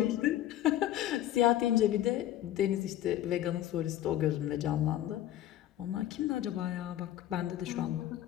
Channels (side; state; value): right; quieter; 12.8 dB